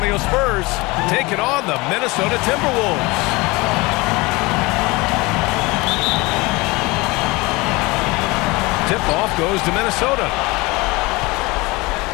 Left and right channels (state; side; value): quieter; right; 23.7 dB